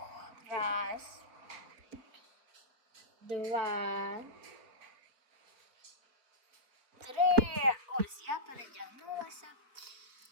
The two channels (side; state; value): left; late; 4.3 ms